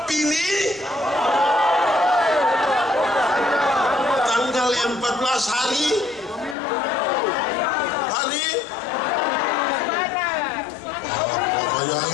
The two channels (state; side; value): drops out; right; at 6.6 s